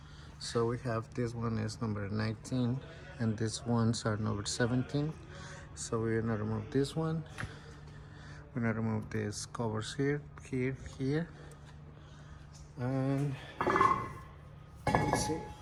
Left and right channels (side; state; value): both; identical; correlation 1.00